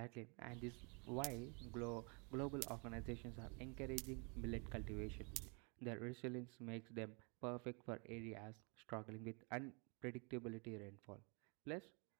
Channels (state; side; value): quieter; left; 33.5 dB